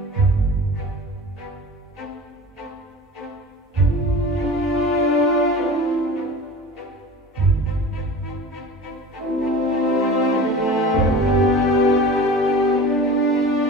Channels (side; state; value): both; normal; correlation 0.36